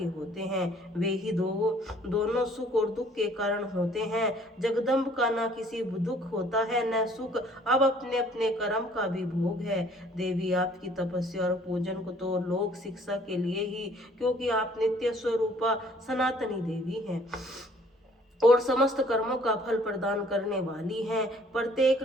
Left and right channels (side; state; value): both; normal; correlation 0.58